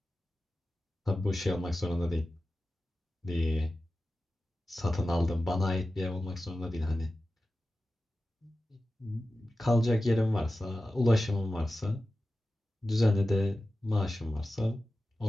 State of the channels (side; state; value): both; normal; correlation 0.94